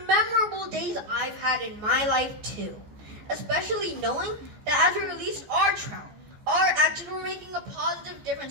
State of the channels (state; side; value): late; left; 14 ms